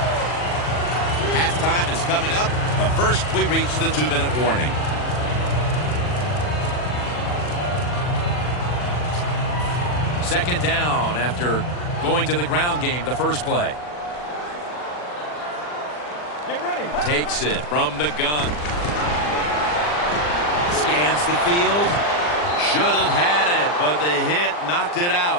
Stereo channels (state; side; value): late; right; 40 ms